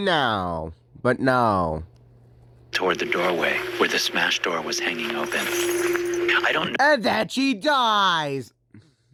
But no. Toward the doorway where the smashed door was hanging open. I don't And then she dies.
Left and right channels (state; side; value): identical; both; correlation 1.00